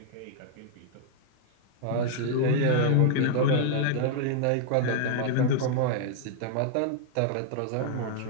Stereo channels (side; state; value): both; different; correlation -0.01